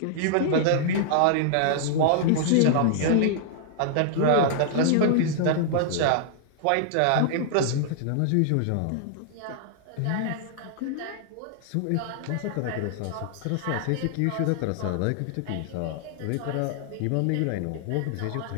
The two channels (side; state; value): both; different; correlation -0.01